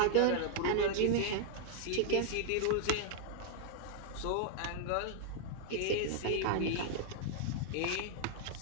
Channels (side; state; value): both; different; correlation -0.01